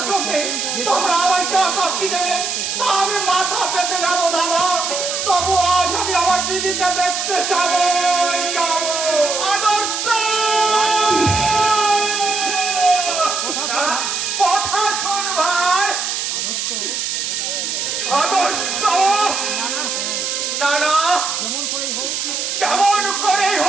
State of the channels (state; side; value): noise; right; hiss, 2 dB below the sound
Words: জন্য তোমরা আমায় যা শাস্তি দেবে তা আমি মাথা পেতে নেবো দাদা। তবু আজ আমি আমার দিদিকে দেখতে যাবো। আদর্শ কথা শোন ভাই। আদর্শ না না, যেমন করেই